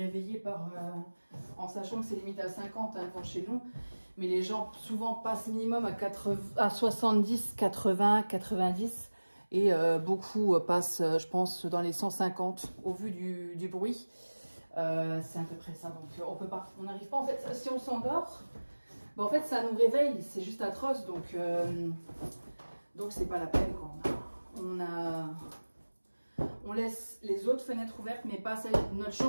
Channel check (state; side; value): inverted; both; correlation -1.00